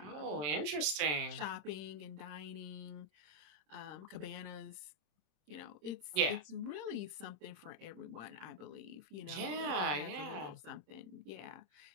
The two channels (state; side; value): late; left; 27 ms